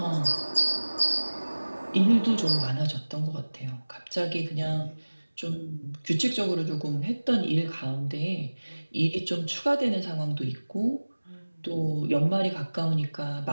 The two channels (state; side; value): inverted; both; correlation -1.00